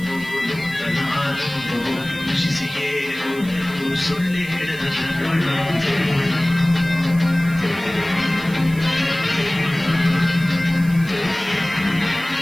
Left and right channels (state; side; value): noise; right; hiss, 19 dB below the sound